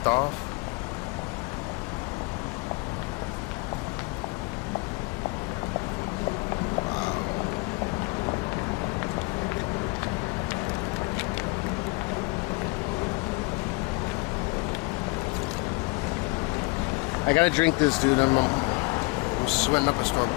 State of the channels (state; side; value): quieter; right; 26.1 dB